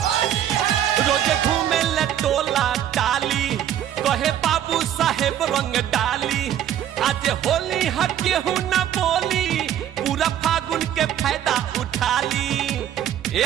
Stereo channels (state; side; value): quieter; left; 10.8 dB